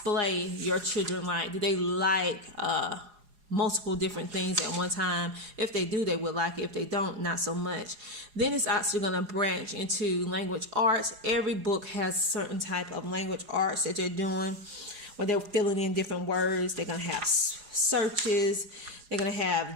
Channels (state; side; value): late; left; 4.8 ms